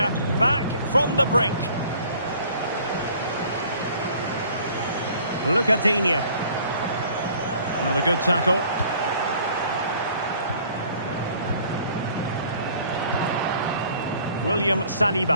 back from the brink. Look at Digne. Another good tackle. William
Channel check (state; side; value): inverted; both; correlation -0.53